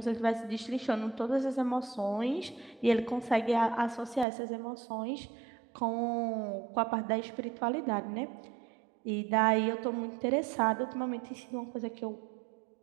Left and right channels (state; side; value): drops out; left; at 4.2 s